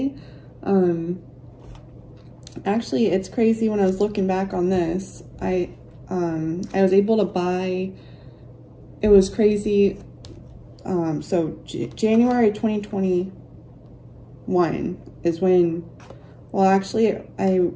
actually, it's crazy. When I was looking back on this, I was able to buy, it was crazy. So January 2021 is when, well, actually I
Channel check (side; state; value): both; identical; correlation 1.00